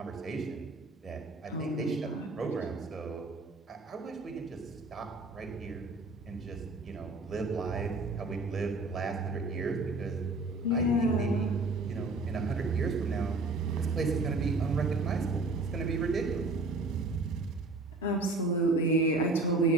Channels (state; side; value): quieter; left; 3.1 dB